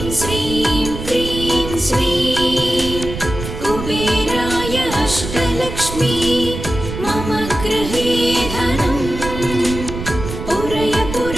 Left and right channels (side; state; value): right; noise; rumble, 7 dB below the sound